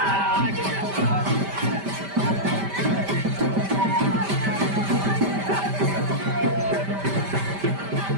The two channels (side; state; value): left; late; 5.1 ms